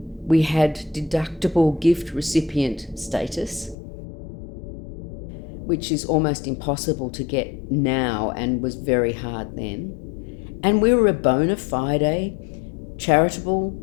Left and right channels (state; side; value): drops out; right; at 3.8 s